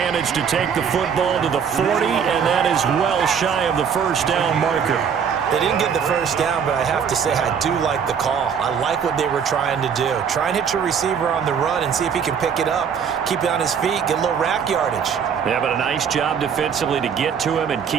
to take the football to the 40, and that is well shy of the first down marker. They didn't get the first down, but I have to say I do like the call. I like what they were trying to do. Try and hit your receiver on the run and see if he can pick it up, keep it on his feet, get a little rack yardage. Yeah, but a nice job defensively to get to him and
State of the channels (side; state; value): left; quieter; 7.2 dB